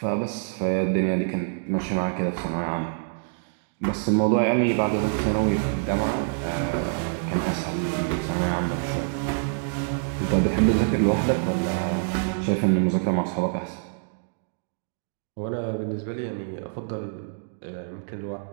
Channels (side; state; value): left; silent; digital silence